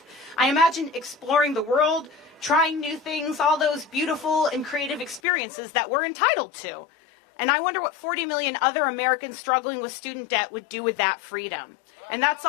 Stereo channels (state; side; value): drops out; right; at 5.2 s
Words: I imagine exploring the world, trying new things, all those beautiful and creative experiences that we're entitled to. And I wonder what 40 million other Americans struggling with student debt would do with that freedom. And that's